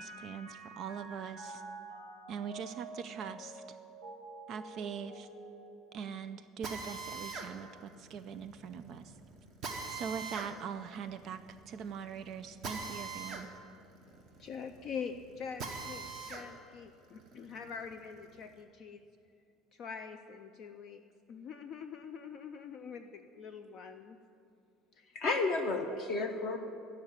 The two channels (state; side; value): normal; both; correlation 0.43